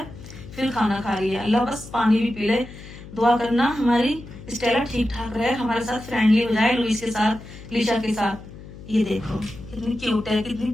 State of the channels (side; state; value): left; noise; hum, 15 dB below the sound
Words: फिर खाना खा रही है। अल्लाह बस पानी भी पी ले। दुआ करना हमारी स्टेला ठीक ठाक रहे, हमारे साथ फ्रेंडली हो जाए, लुइस के साथ, लीशा के साथ। ये देखो कितनी क्यूट है, कितनी